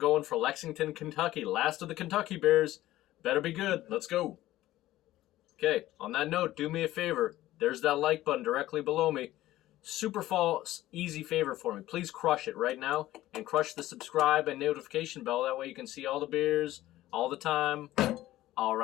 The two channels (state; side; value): quieter; right; 15.3 dB